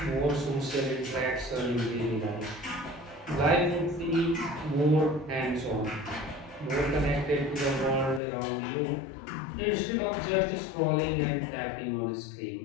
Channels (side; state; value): right; drops out; at 8.2 s